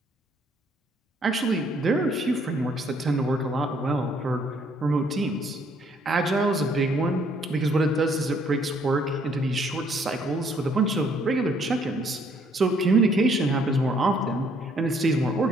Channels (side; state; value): both; normal; correlation 0.65